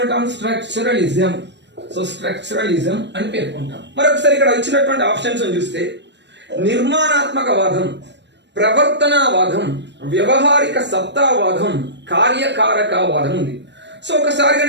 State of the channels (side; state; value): left; late; 0.51 ms